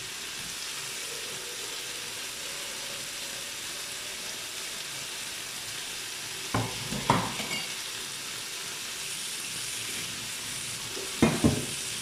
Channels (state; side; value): identical; both; correlation 1.00